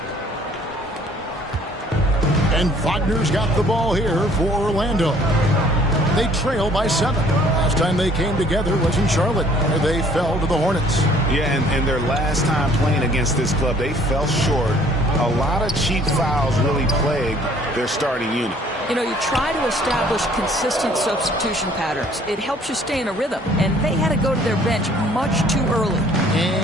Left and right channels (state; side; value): normal; both; correlation 0.57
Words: And Wagner's got the ball here for Orlando. They trail by 7. Last time they came together was in Charlotte, where they fell to the Hornets. Yeah, and their last time playing against this club, they fell short. A lot of cheap fouls really plagued their starting unit. You know, you try to establish consistent substitution patterns. It helps you stay in a rhythm, and they had to go to their bench much too early.